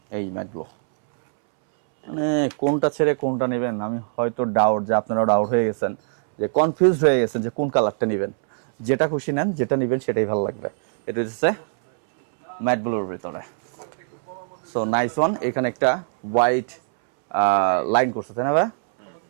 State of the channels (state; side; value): silent; left; 64 dB below the other